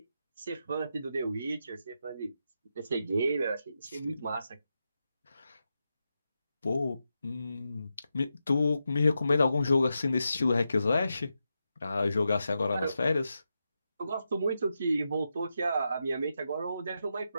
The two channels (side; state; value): both; inverted; correlation -0.87